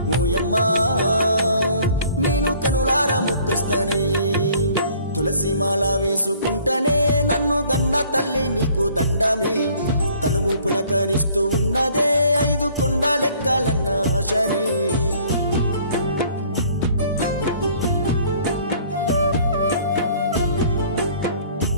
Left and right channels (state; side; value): inverted; both; correlation -0.56